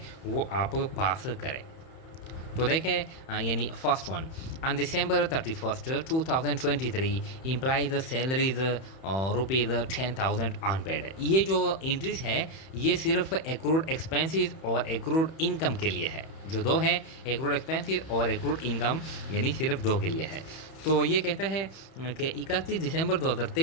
वो आप पास करें। तो देखें यानी first one, on December 31st 2023 employees salaries rupees 10,000 unpaid. ये जो इंट्रीज है ये सिर्फ एक्रूड एक्सपेंसेस और एक्रूड इनकम के लिए है। जो दो है, एक्रूड एक्सपेंसेस और एक्रूड इनकम, यानी सिर्फ दो के लिए है। तो ये कहता है कि 31 दिसंबर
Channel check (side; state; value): right; late; 31 ms